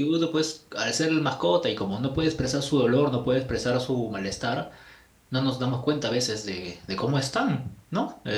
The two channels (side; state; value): both; identical; correlation 1.00